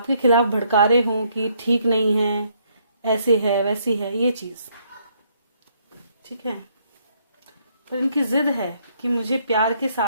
खिलाफ भड़का रहे हो कि ठीक नहीं है, ऐसे है वैसी है, ये चीज, ठीक है, पर इनकी जिद है कि मुझे प्यार के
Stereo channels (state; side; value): inverted; both; correlation -0.70